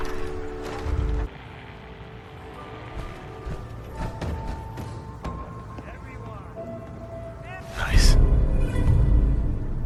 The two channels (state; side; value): identical; both; correlation 1.00